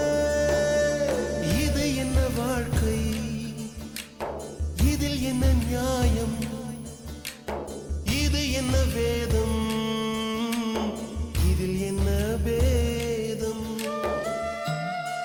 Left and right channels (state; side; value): identical; both; correlation 1.00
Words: இது என்ன வாழ்க்கை, இதில் என்ன நியாயம், இது என்ன வேதம், இதில் என்ன வேதம்.